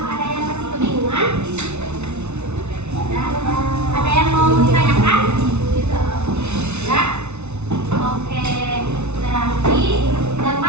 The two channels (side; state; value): left; late; 0.81 ms